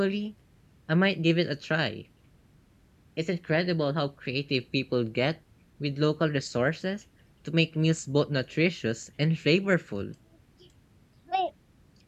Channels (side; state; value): both; identical; correlation 1.00